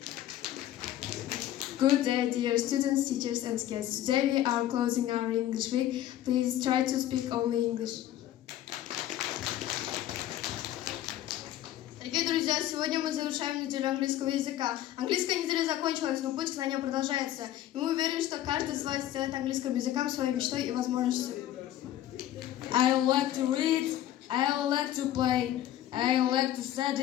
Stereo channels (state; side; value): quieter; right; 12.8 dB